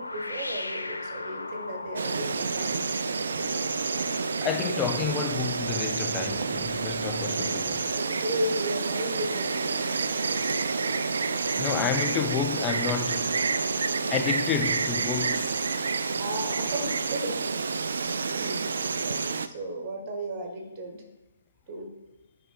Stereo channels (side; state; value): both; inverted; correlation -0.61